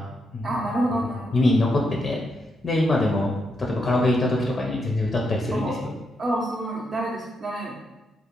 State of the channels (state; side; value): normal; both; correlation 0.81